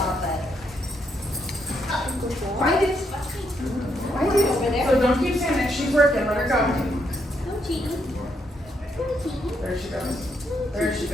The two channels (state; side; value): normal; both; correlation 0.76